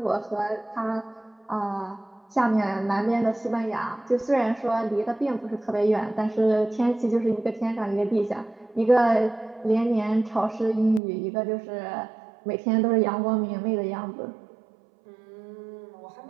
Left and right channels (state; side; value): drops out; left; at 11.0 s